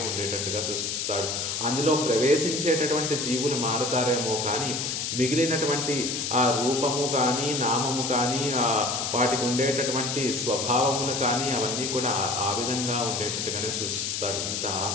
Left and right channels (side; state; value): left; noise; hiss, 2 dB below the sound